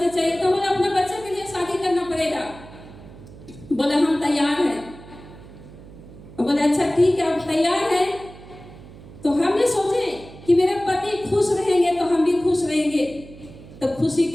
चाहिए। तो बोले अपना बच्चे के लिए शादी करना पड़ेगा। बोले हम तैयार हैं। बोले अच्छा ठीक है, आप तैयार हैं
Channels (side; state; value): right; noise; hum, 18 dB below the sound